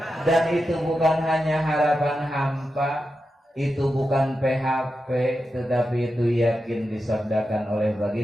Dan itu bukan hanya harapan hampa, itu bukan PHP, tetapi itu yakin disabdakan oleh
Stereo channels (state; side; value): normal; both; correlation 0.89